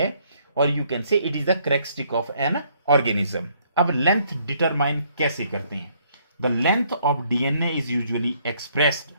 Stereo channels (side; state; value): both; inverted; correlation -0.67